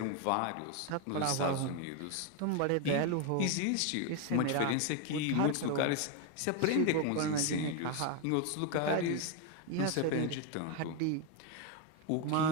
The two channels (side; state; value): both; different; correlation 0.01